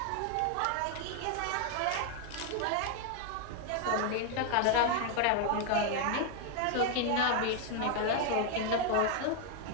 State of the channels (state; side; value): different; both; correlation 0.00